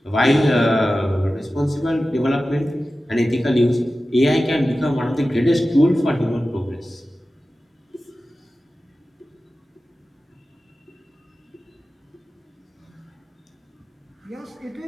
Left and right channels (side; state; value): both; normal; correlation 0.95